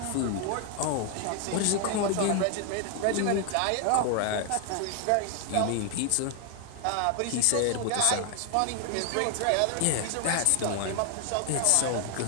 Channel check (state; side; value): different; both; correlation 0.00